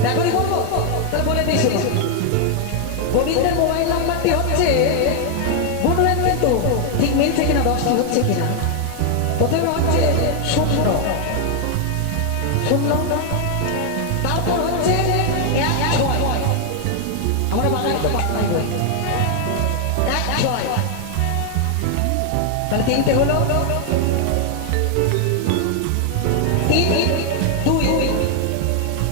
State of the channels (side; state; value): both; different; correlation 0.00